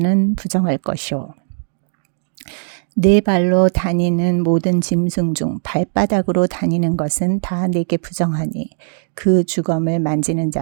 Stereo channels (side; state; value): left; silent; digital silence